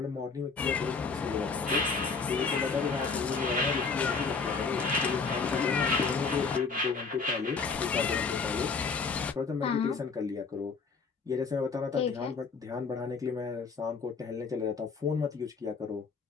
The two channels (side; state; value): right; quieter; 4.8 dB